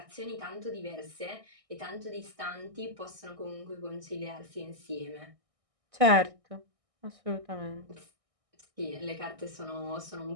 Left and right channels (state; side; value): late; left; 1.6 ms